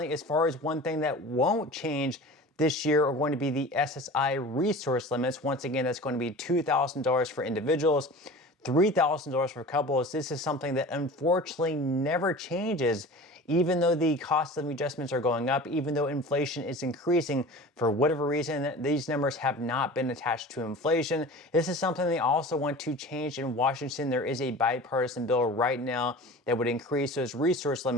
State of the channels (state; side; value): normal; both; correlation 0.38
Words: as far as one thing that won't change this year are going to be the SSI resource limits. Once again, that's going to be $2,000 for individuals, $3,000 for couples. This is something that unfortunately never changes, even though the cost of adjustments are going up, even though inflation is increasing. For whatever reason, these numbers have not been attached to inflation. This is something they also want to change in Washington. There is a bipartisan bill right now that would increase those resource